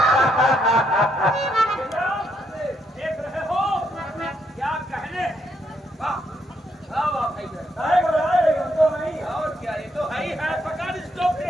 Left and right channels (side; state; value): both; normal; correlation 0.75